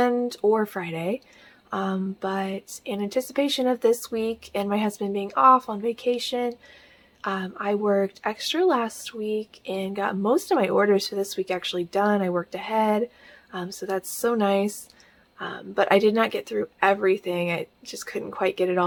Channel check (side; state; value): both; identical; correlation 1.00